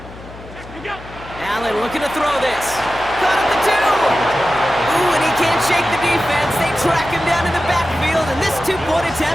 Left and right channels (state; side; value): noise; left; hum, 17 dB below the sound